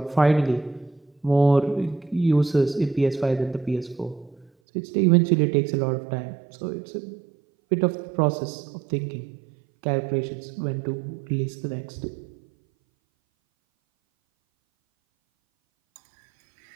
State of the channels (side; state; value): left; drops out; at 4.5 s